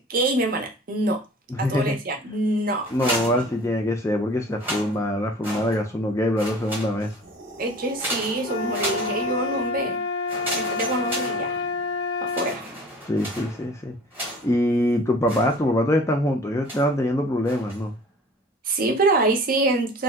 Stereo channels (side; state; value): both; normal; correlation 0.44